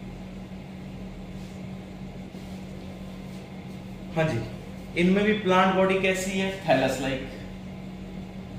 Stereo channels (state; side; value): identical; both; correlation 1.00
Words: हाँ जी, इनमें भी प्लांट बॉडी कैसी है? Thallus like.